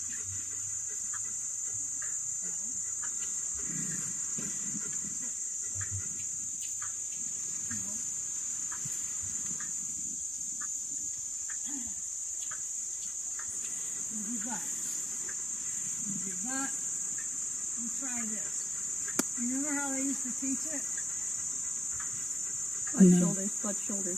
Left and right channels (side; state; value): both; normal; correlation 0.94